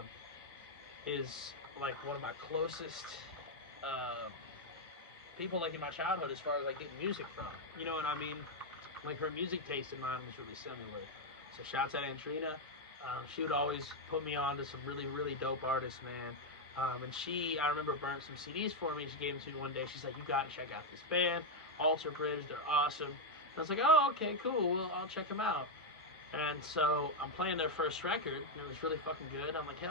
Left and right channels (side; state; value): both; normal; correlation 0.03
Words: is like one of my closest people, like in my childhood, as far as like getting music from. You know what I mean? Like her music taste and mine was really similar. So shouts out Antrina. She would always put me on to some really, really dope artists, man. And I remember burnt some CDs for me. She gave them to me one day. She's like, you got to check out this band, Alter Bridge. They're awesome. And I was like, oh, okay, cool. Well, I'll check them out. And so I'm playing their first record, and it was really fucking good. I'm like,